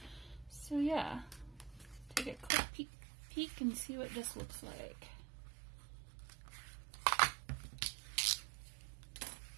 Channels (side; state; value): left; drops out; at 2.5 s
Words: So yeah, take a quick peek and see what this looks like.